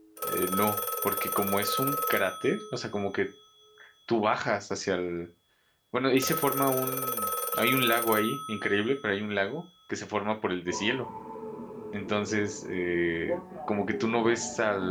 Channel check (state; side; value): identical; both; correlation 1.00